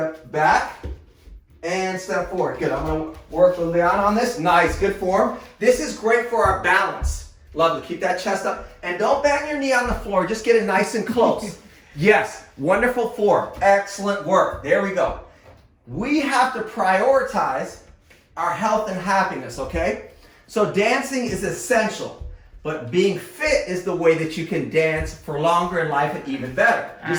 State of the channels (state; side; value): identical; both; correlation 1.00